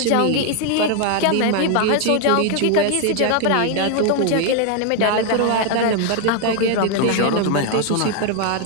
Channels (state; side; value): different; both; correlation 0.01